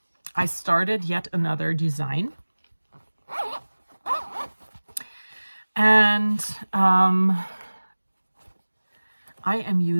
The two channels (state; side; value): inverted; both; correlation -1.00